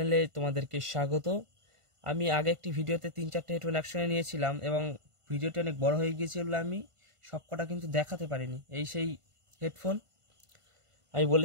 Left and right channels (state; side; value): late; left; 1.5 ms